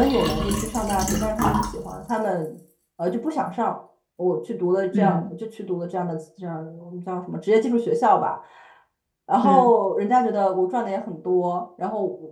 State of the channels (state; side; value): identical; both; correlation 1.00